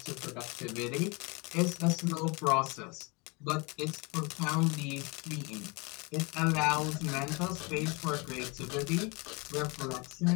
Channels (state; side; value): quieter; right; 28.4 dB